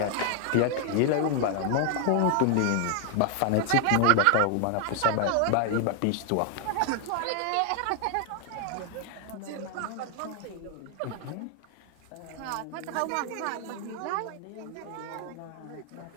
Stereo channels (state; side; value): different; both; correlation 0.00